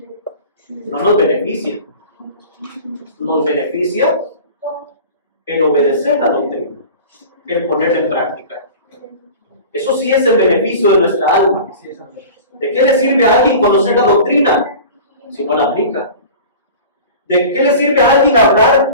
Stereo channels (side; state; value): both; inverted; correlation -0.39